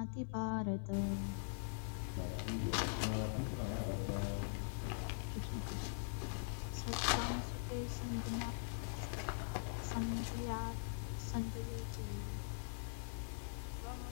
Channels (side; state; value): right; silent; digital silence